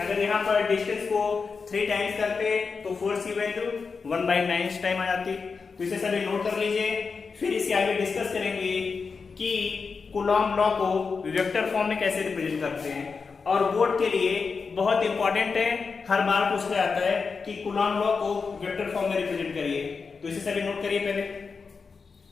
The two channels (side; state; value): right; quieter; 5.0 dB